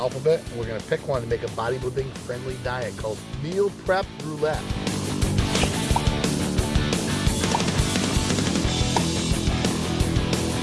And we're gonna pick one to make a bodybuilding-friendly diet called Meal Prep Roulette.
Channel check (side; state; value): both; identical; correlation 1.00